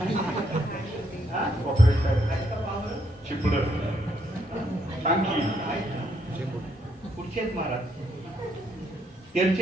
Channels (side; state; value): both; normal; correlation 0.74